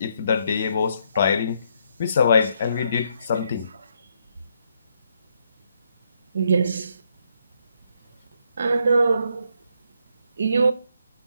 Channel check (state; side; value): inverted; both; correlation -0.75